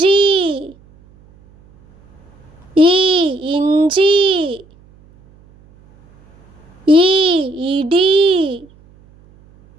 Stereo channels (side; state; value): right; noise; hum, 29 dB below the sound